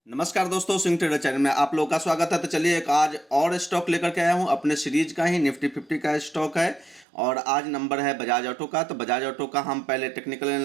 नमस्कार दोस्तों, सिंह ट्रेडर चैनल में आप लोगों का स्वागत है। तो चलिए एक आज और स्टॉक लेकर के आया हूँ। अपने सीरीज का ही निफ्टी 50 का स्टॉक है और आज नंबर है बजाज ऑटो का। तो बजाज ऑटो का हम पहले टेक्निकल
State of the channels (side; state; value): left; drops out; at 7.1 s